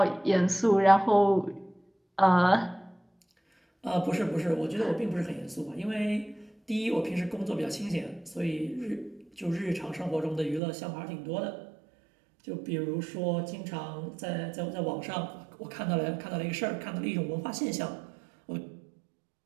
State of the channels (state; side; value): drops out; left; at 10.6 s